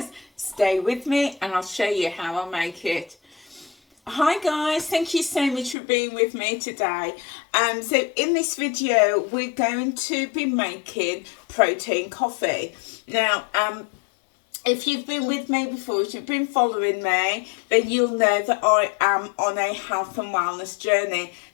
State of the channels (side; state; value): right; drops out; at 5.8 s